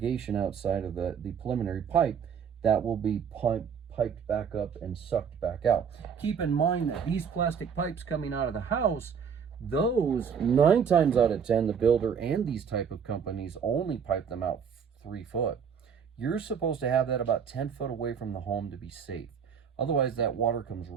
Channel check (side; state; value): left; quieter; 7.1 dB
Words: outside of the preliminary pipe, that will be piped back up and sucked back out. Keep in mind that these plastic pipes coming out of the house, those 9 times out of 10, the builder and these type of companies only pipe them out 3 foot. You're supposed to have that about 10 foot away from the home to be safe. Otherwise, that water comes